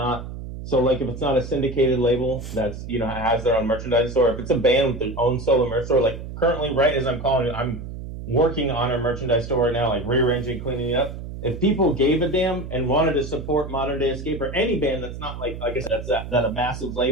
so like if it's not a syndicated label that's has their own merchandise store. If it's a band with their own solo merch store, like currently right as I'm calling you, I'm working on our merchandise store right now, like rearranging, cleaning it up. If people gave a damn and wanted to support Modern Day Escape or any band that's not like I guess that's that a massive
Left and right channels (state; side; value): noise; right; hum, 9 dB below the sound